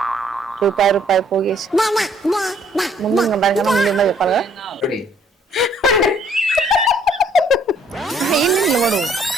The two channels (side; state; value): both; normal; correlation 0.63